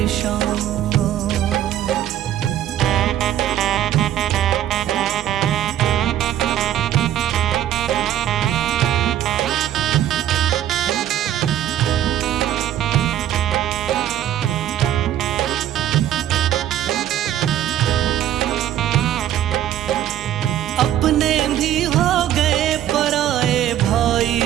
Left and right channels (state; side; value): quieter; left; 11.7 dB